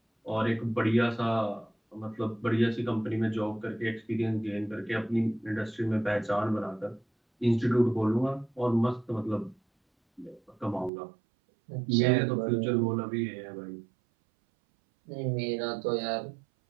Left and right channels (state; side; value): drops out; left; at 10.9 s